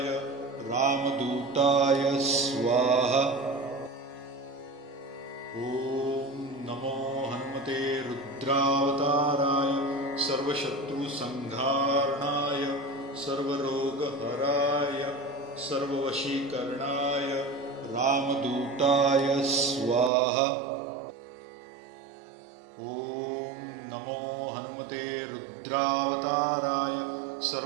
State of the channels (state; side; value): drops out; left; at 20.1 s